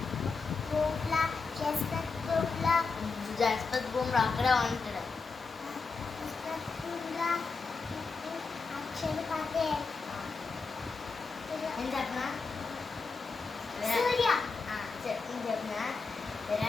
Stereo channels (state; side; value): quieter; right; 4.5 dB